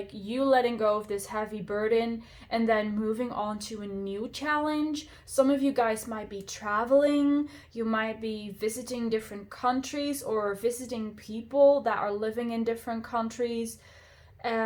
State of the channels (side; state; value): both; identical; correlation 1.00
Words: you letting go of this heavy burden and then moving on to a new challenge. Some of you guys might be traveling, you might be visiting different countries or visiting people that are living in different countries.